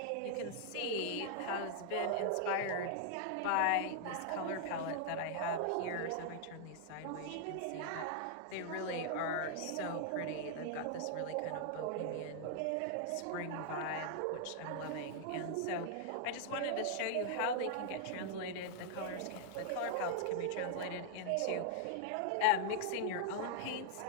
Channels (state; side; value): different; both; correlation -0.01